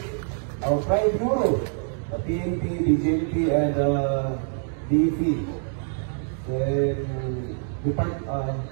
our Pride Bureau, the PNP, DJP, and DEP,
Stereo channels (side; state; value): left; silent; 61 dB below the other